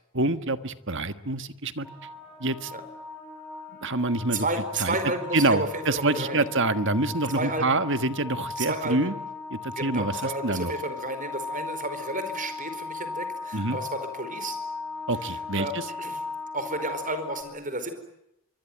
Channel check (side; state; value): both; normal; correlation 0.12